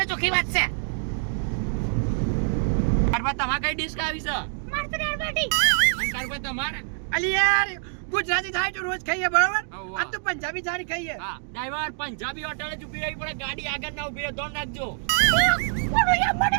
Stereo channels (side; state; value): left; silent; 61 dB below the other